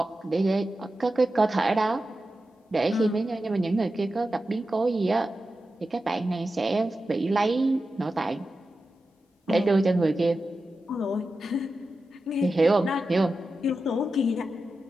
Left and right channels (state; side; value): normal; both; correlation 0.92